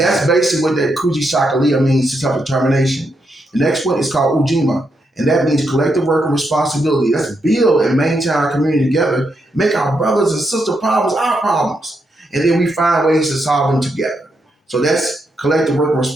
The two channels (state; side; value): normal; both; correlation 0.81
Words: yourself. basically what that Kuji Chakalia means, to self-determination. The next one is called Ujima, and that means collective work and responsibility. Let's build and maintain our community together, make our brothers and sister problems our problems, and then we find ways to solve them together. So that's collective work and